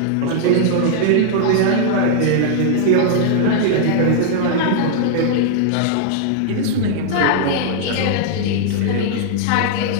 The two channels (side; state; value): both; different; correlation -0.01